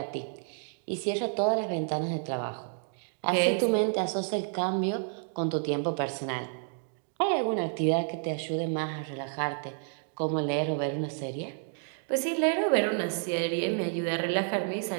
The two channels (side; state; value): left; silent; 58 dB below the other